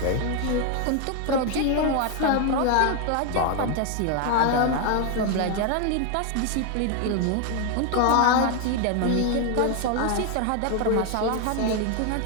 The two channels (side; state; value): both; different; correlation 0.01